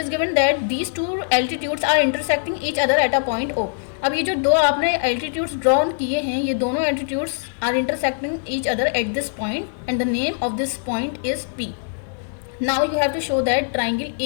given that these two altitudes are intersecting each other at a point O। अब ये जो दो आपने एल्टीट्यूड्स ड्रॉ किए हैं, ये दोनों altitudes are intersecting each other at this point and the name of this point is P। Now you have to show that triangle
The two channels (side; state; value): right; silent; digital silence